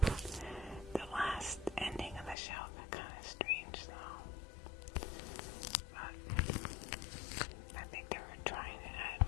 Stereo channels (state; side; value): drops out; right; at 2.4 s